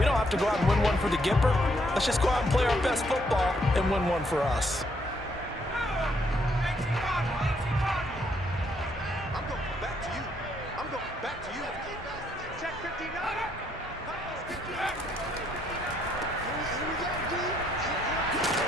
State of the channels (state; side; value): normal; both; correlation 0.71